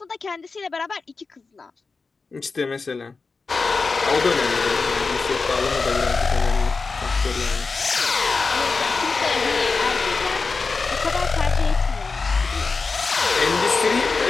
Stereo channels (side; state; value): right; quieter; 4.3 dB